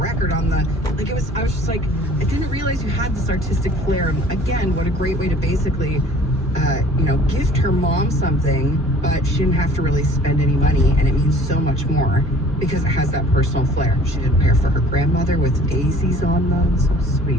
record on the, like it was, I was just like, I didn't realize you had this artistic flair. And again, what a great way to basically, gift her mom something, but she didn't have to really spend any money, and it means so much more because it has that personal flair. She did a pair for her grandmother with daisies on them. So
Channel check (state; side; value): normal; both; correlation 0.51